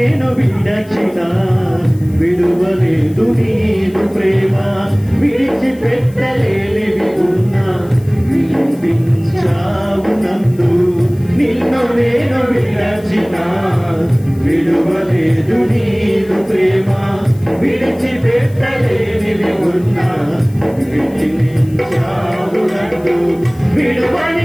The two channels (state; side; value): noise; left; hiss, 26 dB below the sound